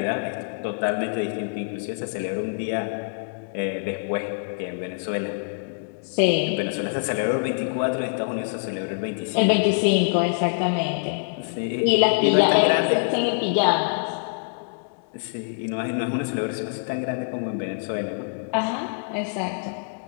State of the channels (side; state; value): right; silent; digital silence